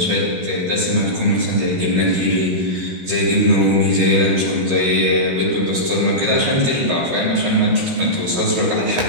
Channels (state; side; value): late; left; 16 ms